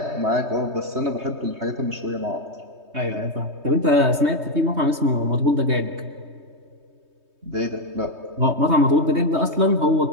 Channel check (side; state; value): left; late; 3.2 ms